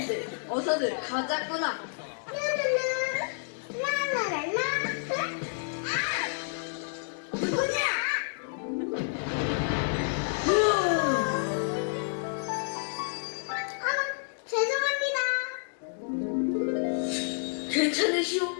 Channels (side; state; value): right; silent; digital silence